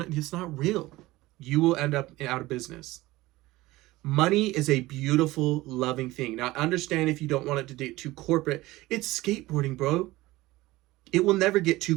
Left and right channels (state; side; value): quieter; left; 18.7 dB